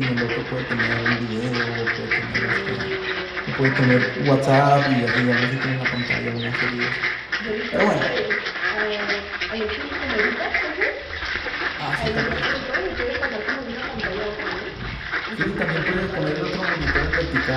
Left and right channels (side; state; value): both; identical; correlation 1.00